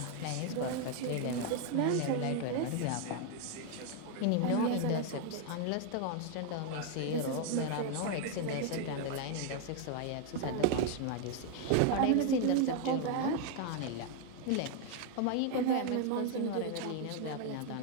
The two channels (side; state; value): both; different; correlation 0.00